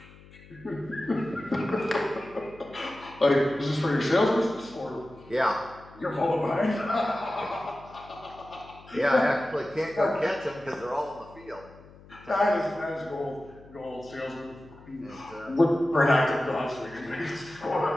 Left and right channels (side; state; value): left; noise; hum, 22 dB below the sound